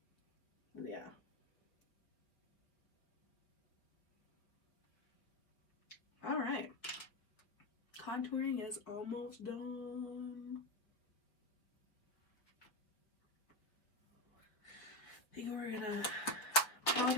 Yeah. All right. Contouring is almost done. I think we're gonna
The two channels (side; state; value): right; late; 4.7 ms